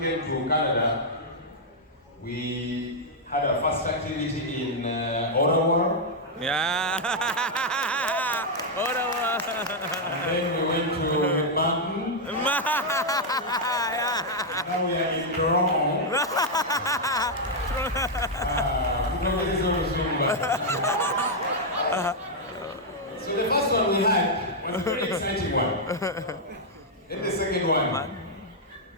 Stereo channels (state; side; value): normal; both; correlation -0.03